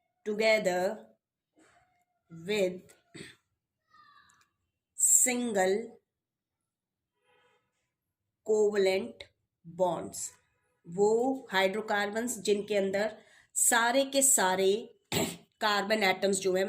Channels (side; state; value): both; identical; correlation 1.00